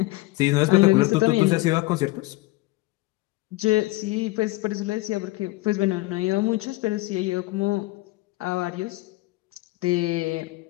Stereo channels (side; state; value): right; quieter; 20.5 dB